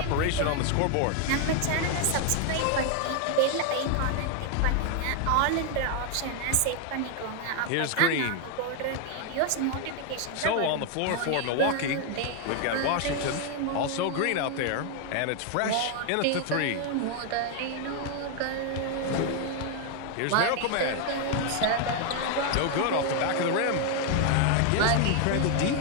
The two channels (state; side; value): different; both; correlation 0.00